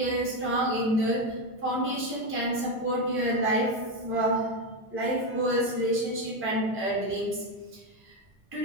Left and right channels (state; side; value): normal; both; correlation 0.10